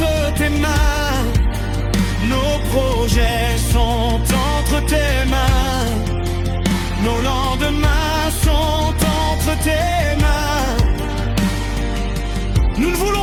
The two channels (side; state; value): both; identical; correlation 1.00